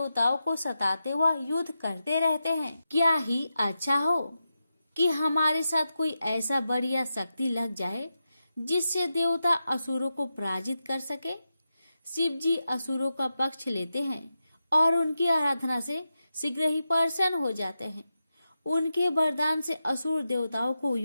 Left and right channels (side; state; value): both; inverted; correlation -0.90